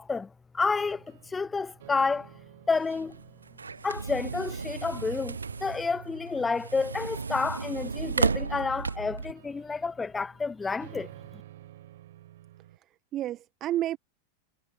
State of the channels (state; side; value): normal; both; correlation 0.53